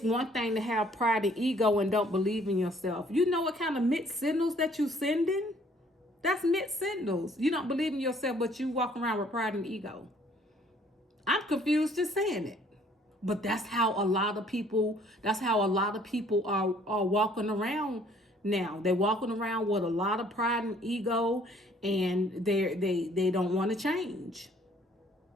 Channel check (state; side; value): normal; both; correlation 0.60